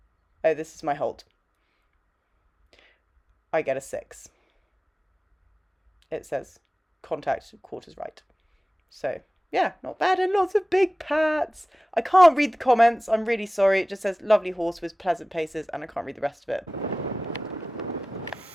Oh, this is my halt. I get a 6. It says contact quarters right. So yeah, not bad, and lots of big pats. I can't read the comments. I'm really sorry. It just says lovely horse with pleasant paces, and I can't read the rest of it.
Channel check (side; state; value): both; normal; correlation 0.97